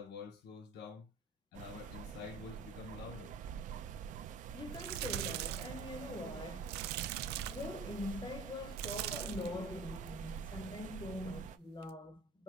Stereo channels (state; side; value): quieter; left; 3.5 dB